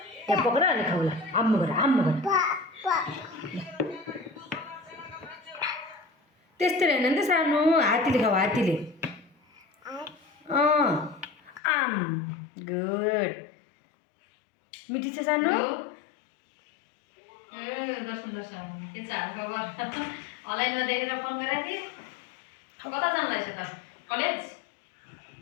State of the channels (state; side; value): drops out; right; at 11.6 s